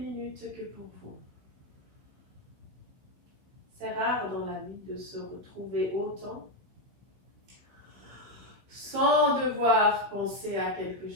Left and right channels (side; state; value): left; late; 16 ms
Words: que pour vous. C'est rare dans la vie de se retrouver autant sans devoir penser à quelque